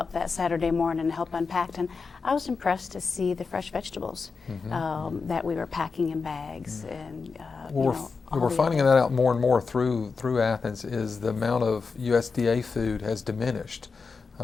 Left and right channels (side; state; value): right; quieter; 4.8 dB